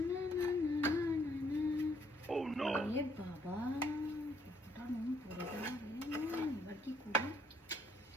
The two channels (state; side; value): normal; both; correlation 0.67